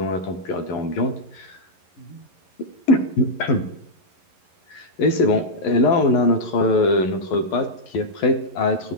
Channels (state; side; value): late; right; 11 ms